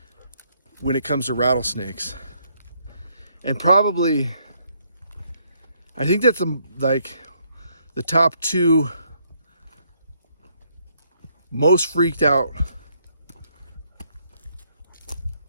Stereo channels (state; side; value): inverted; both; correlation -0.71